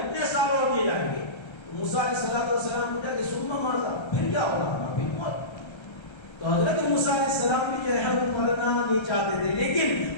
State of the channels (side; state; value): right; late; 1.3 ms